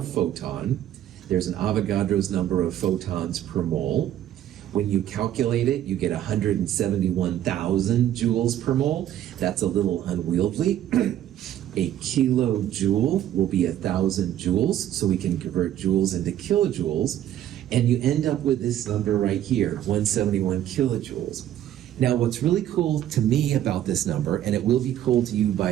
photon, there's an Avogadro's number of photons per mole. When you calculate it, you get 171,000 joules per mole. That's a little unwieldy. A kilojoule will be 1,000 joules, so we can convert joules into kilojoules, and you end up with this number right here, 171 kilojoules. Now, what's really cool to me about this number, and it will be cool to you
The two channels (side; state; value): left; quieter; 11.7 dB